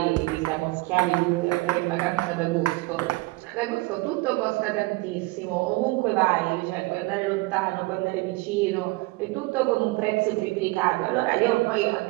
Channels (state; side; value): quieter; left; 23.0 dB